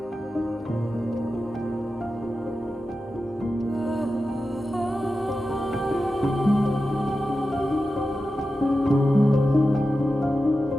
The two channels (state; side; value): normal; both; correlation 0.92